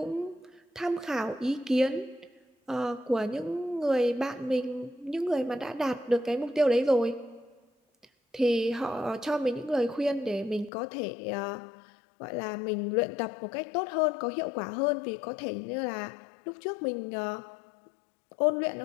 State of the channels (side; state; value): right; drops out; at 10.7 s